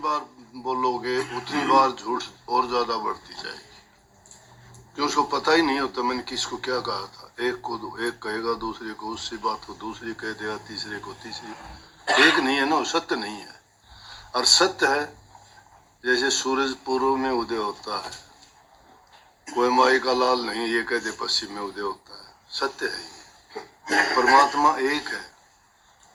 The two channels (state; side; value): identical; both; correlation 1.00